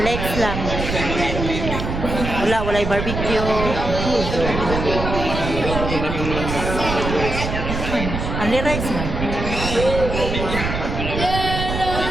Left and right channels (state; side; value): noise; right; rumble, 4 dB below the sound